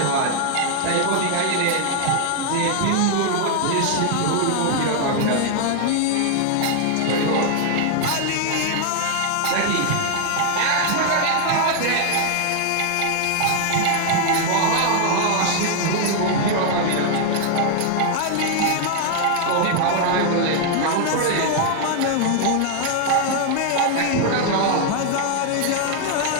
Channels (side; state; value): both; different; correlation 0.00